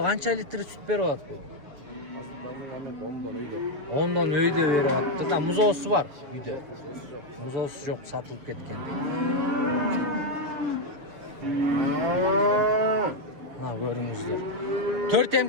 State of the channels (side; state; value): left; late; 7.0 ms